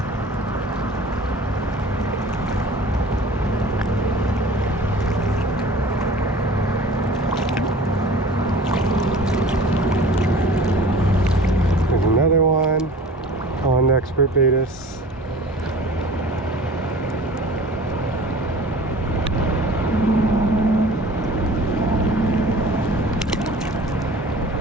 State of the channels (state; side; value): normal; both; correlation 0.43